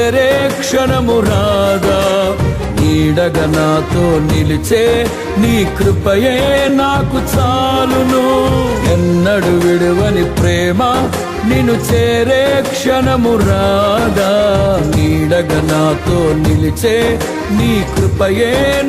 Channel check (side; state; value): both; identical; correlation 1.00